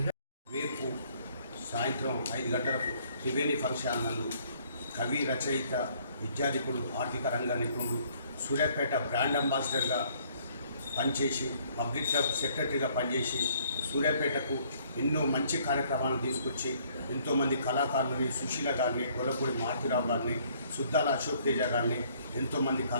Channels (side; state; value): both; inverted; correlation -0.63